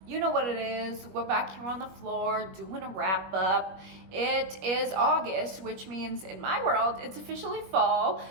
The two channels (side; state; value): left; late; 21 ms